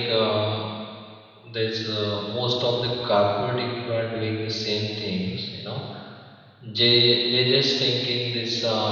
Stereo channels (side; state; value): both; identical; correlation 1.00